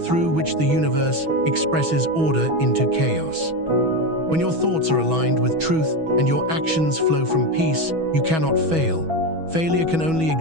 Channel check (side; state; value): left; late; 6.2 ms